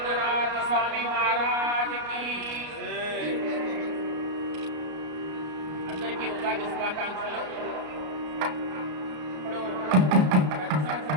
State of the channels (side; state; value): left; late; 33 ms